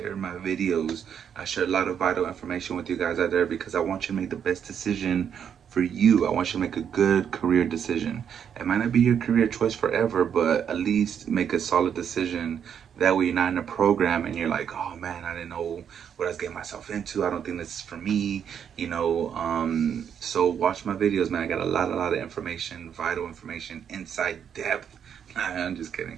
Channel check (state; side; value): quieter; left; 8.2 dB